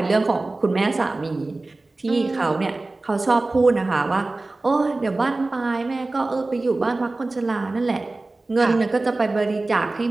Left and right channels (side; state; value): left; quieter; 3.1 dB